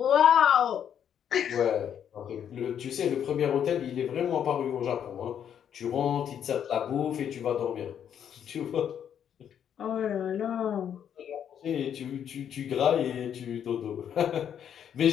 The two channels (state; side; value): quieter; right; 9.0 dB